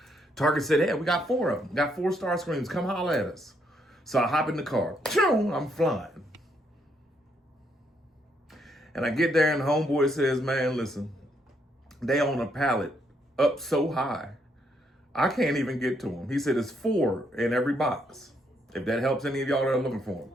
Target said, hey, we got 4 of them. Got 4 Starscreams. Come holler at us. So I hop in the car. I'm flying. And I get there and the homeboy says, man, listen, they on a pallet up so high, I can't even get to them. He said, it's 4 in every box. If that helps any of y'all that are looking for them.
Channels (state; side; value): normal; both; correlation 0.74